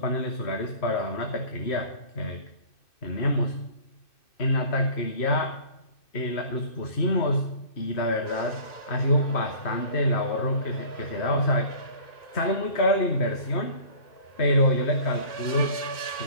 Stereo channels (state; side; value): late; right; 2.6 ms